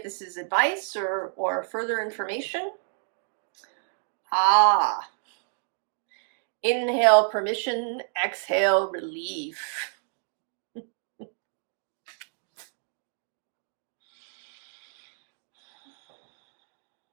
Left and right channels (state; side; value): silent; left; digital silence